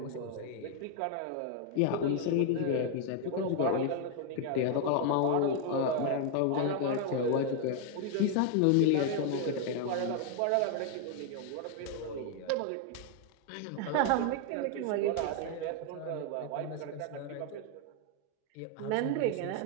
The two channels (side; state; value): both; different; correlation 0.00